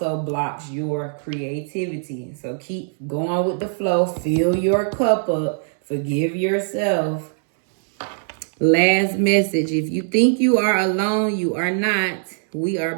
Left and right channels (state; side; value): silent; left; digital silence